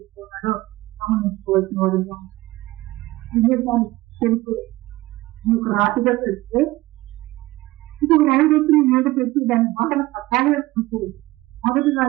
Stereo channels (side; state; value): left; quieter; 18.8 dB